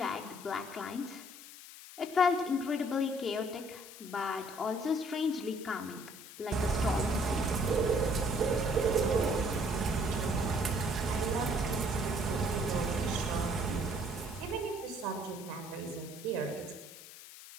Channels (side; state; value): left; noise; hiss, 15 dB below the sound